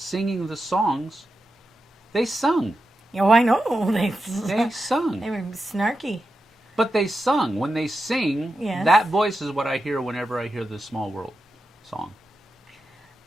the songs. They sung. Oh, I know. They sung. They were snarky. But they sung. When they sing, Yes. that voice is what I hear whenever I hear the Small World song.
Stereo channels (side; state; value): both; normal; correlation 0.89